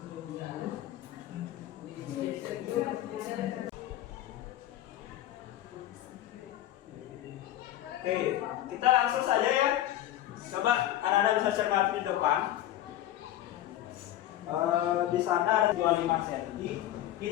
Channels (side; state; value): right; quieter; 13.2 dB